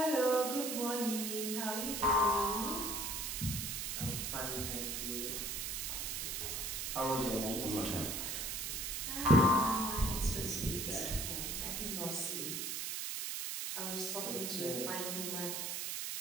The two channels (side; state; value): right; noise; hiss, 2 dB below the sound